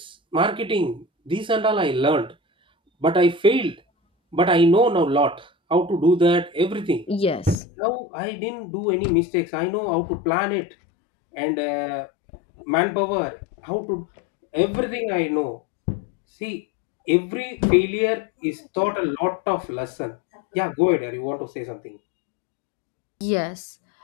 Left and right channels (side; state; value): right; drops out; at 7.6 s